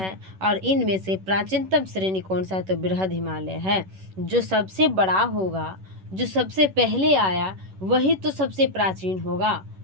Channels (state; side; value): late; left; 11 ms